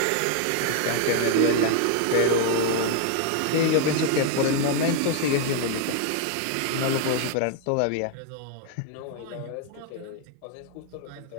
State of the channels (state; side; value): different; both; correlation 0.00